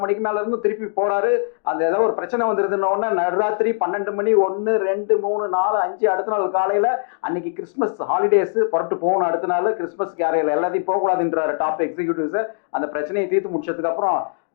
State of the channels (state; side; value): silent; right; digital silence